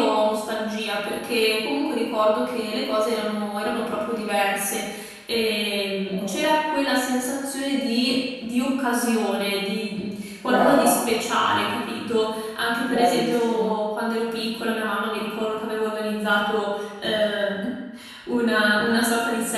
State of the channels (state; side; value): identical; both; correlation 1.00